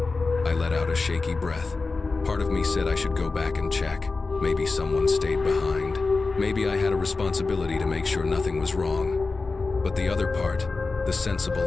I let out a shaky breath. Part of me said I should go back and check. Maybe someone stayed behind. Maybe I had a responsibility to make sure nothing was wrong. But the other part, the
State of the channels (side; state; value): right; quieter; 3.9 dB